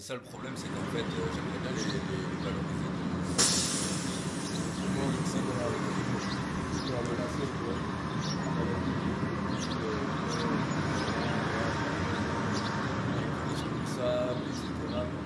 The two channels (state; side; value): identical; both; correlation 1.00